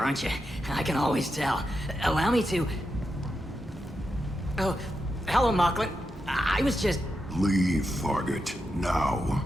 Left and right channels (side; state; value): both; normal; correlation 0.87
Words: aren't you? I can always tell. Allow me to... Oh, hello, Mocklin. I was just... Leave, Fargate, now.